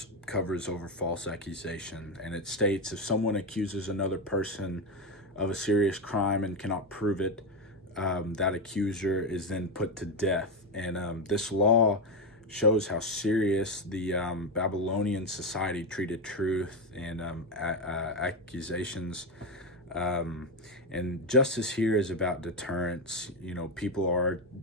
covers over false accusation. And it states if someone accuses another person of a serious crime and cannot prove it, that accuser is then put to death. And this law shows how serious the Babylonian society treated truth and accusations. And justice here is about deterrence. People are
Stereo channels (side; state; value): both; normal; correlation 0.11